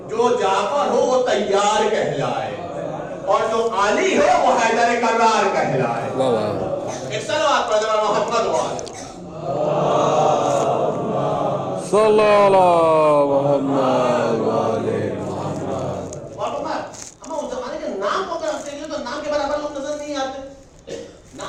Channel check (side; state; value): both; identical; correlation 1.00